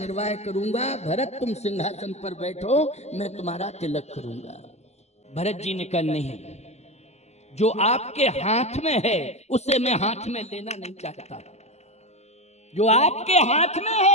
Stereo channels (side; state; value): right; late; 0.32 ms